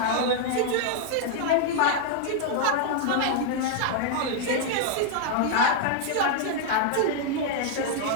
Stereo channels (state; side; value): different; both; correlation -0.01